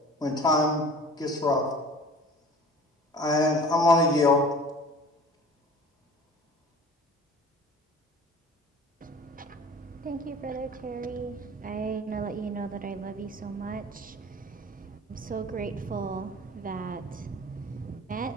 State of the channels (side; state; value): both; normal; correlation 0.43